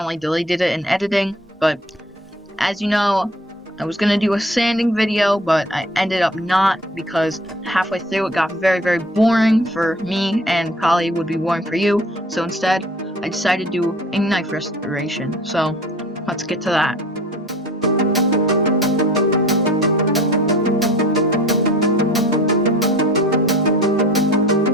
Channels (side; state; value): both; normal; correlation 0.47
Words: deleted it in editing, but as you know, I was gonna do a sanding video, but I ended up not because halfway through it got very, very boring for me and probably would be boring for you, so instead, I decided to do a knife restoration, so let's get to that.